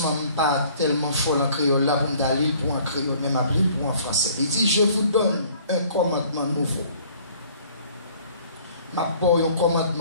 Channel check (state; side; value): inverted; both; correlation -0.55